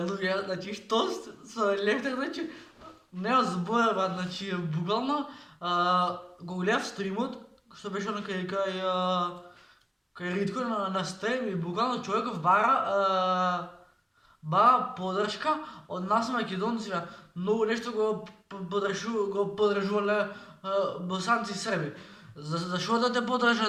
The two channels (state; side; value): identical; both; correlation 1.00